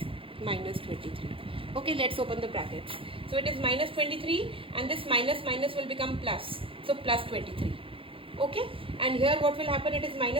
minus 23. Okay, let's open the brackets. So it is minus 23 and this minus will become plus. So plus 23. Okay, and here what will happen, it is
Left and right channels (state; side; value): late; left; 0.26 ms